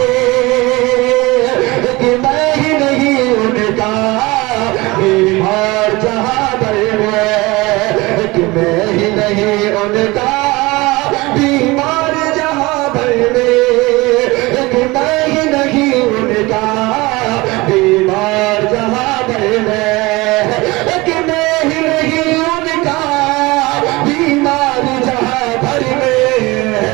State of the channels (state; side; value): quieter; left; 22.4 dB